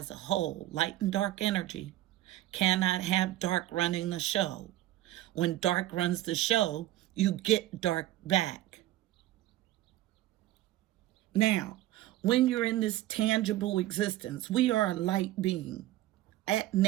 a whole. Light and dark energy cannot have dark running the show. When dark runs the show, you get dark back. Now, when you're in this tangible existence, we are a light being at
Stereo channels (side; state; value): left; quieter; 15.0 dB